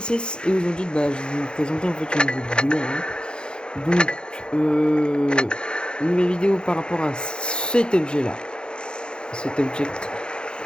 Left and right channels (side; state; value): right; late; 0.050 ms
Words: et aujourd'hui je vais vous présenter en fait une nouvelle vidéo. Donc, une nouvelle vidéo par rapport à cet objet-là. Cet object